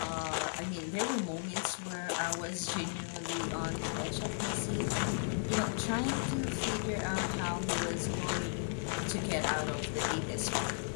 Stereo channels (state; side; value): silent; right; digital silence